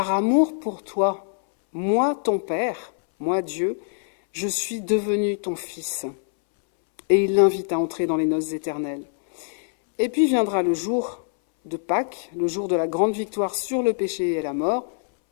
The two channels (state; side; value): silent; right; 63 dB below the other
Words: amour pour toi, moi ton Père, moi Dieu, je suis devenu ton Fils. » Et il l'invite à entrer dans les noces éternelles. Et puis viendra le jour de Pâques, le jour de la grande victoire sur le péché et la mort,